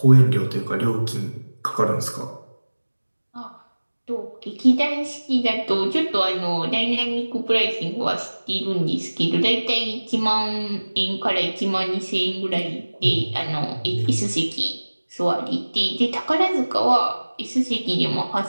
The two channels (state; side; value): inverted; both; correlation -1.00